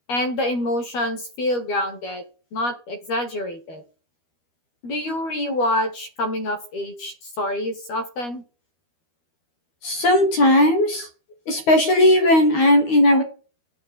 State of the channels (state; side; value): late; right; 12 ms